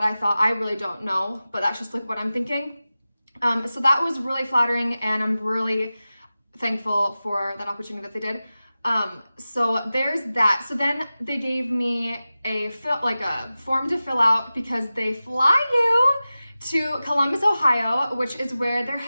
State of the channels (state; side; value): inverted; both; correlation -0.96